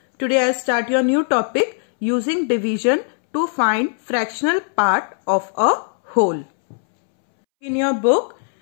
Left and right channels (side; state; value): right; silent; 66 dB below the other